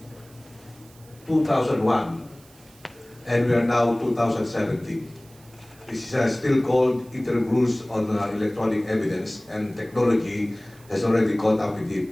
2001, and we are now 2017. This is still called interim rules on electronic evidence, and technology has already caught up with it.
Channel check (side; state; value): right; noise; hiss, 26 dB below the sound